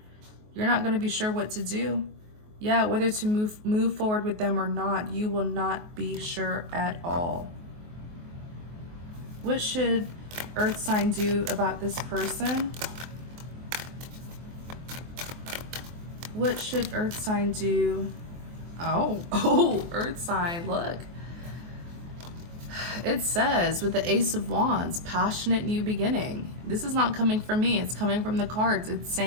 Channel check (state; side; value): late; left; 24 ms